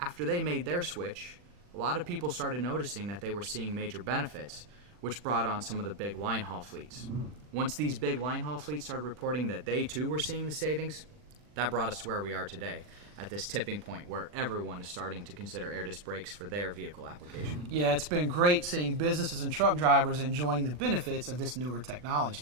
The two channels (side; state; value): left; late; 40 ms